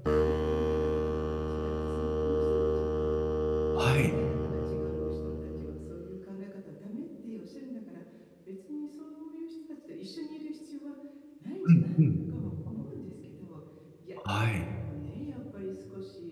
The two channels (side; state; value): both; identical; correlation 1.00